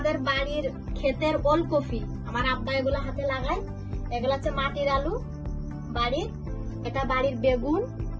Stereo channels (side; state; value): both; identical; correlation 1.00